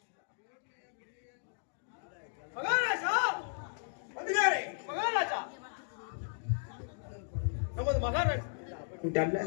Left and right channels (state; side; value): silent; right; digital silence